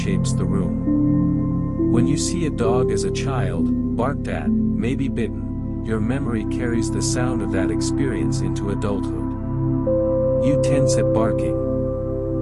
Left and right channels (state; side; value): identical; both; correlation 1.00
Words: the room. When you see a dog as a child, barked at, maybe bitten, your memory carries the sound of that experience into adulthood. You tense at